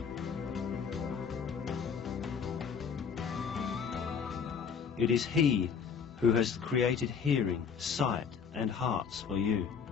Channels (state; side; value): quieter; right; 6.6 dB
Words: It is He who has created hearing, sight and hearts for you.